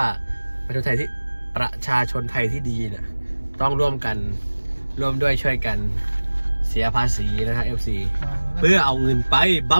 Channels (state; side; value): inverted; both; correlation -1.00